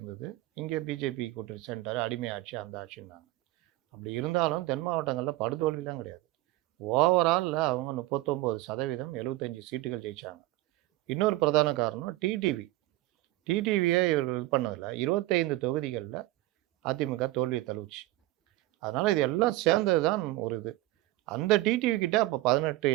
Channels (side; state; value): left; quieter; 18.0 dB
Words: இங்கே பிஜேபி கூட்டணி சென்றார், அடிமை ஆட்சி, அந்த ஆட்சின்னாங்க. அப்படி இருந்தாலும் தென் மாவட்டங்களில் படுதோல்விலாம் கிடையாது. ஓவராலில் அவங்க 39%, 75 சீட்டுகள் ஜெயித்தாங்க. இன்னொரு பிரதான காரணம் டிடிவியே இவர்கள் இது பண்ணதில்ல. 25 தொகுதிகளில் அதிமுக தோல்வியை தழுவுச்சு. அதனால் இது எல்லாம் சேர்ந்தது தான் ஒரு இது. அந்த டிடிவி கிட்ட அப்போ 18